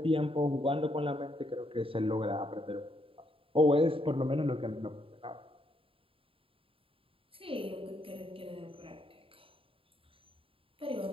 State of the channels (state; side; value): late; left; 0.27 ms